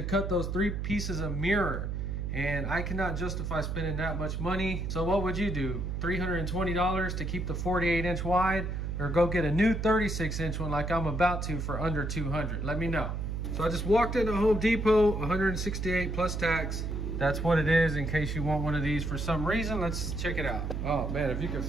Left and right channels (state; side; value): noise; right; hum, 3 dB below the sound